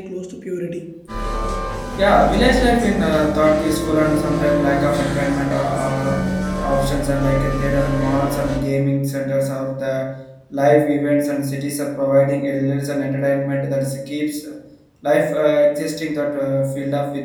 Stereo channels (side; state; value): both; identical; correlation 1.00